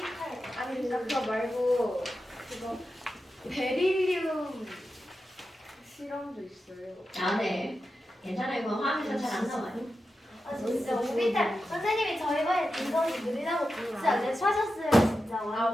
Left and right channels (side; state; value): both; normal; correlation 0.90